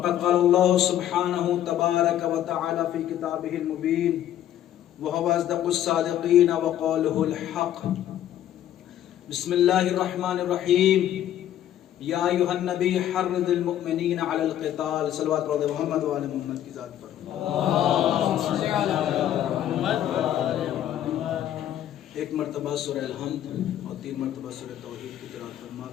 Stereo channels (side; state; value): right; quieter; 11.5 dB